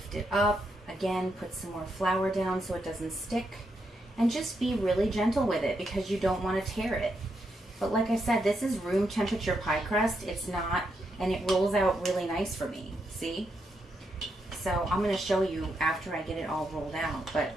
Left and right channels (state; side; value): normal; both; correlation 0.81